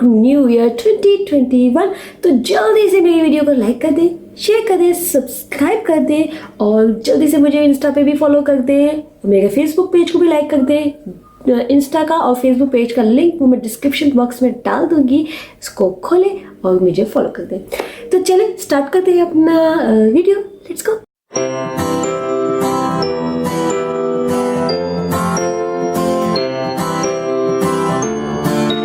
new year 2021। तो जल्दी से मेरी वीडियो को लाइक कर दें, शेयर कर दें, सब्सक्राइब कर दें और जल्दी से मुझे इंस्टा पे भी फॉलो कर दें। मेरे फेसबुक पेज को भी लाइक कर दें। इंस्टा का और फेसबुक पेज का लिंक वो मैं डिस्क्रिप्शन बॉक्स में डाल दूंगी, इसको खोलें और मुझे फॉलो कर दें। तो चलें स्टार्ट करते हैं अपना वीडियो, लेट्स गो।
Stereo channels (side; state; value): both; identical; correlation 1.00